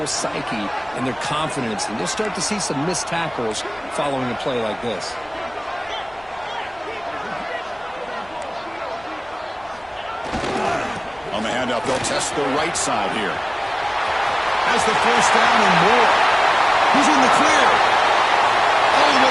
psyche and their confidence. And you'll start to see some missed tackles following a play like this. On the handoff, they'll test the right side here. Has the first down and more. He's in the clear. All the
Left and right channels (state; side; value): noise; left; rumble, 29 dB below the sound